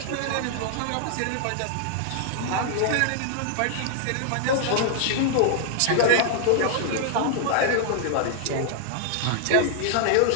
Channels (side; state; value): both; different; correlation 0.00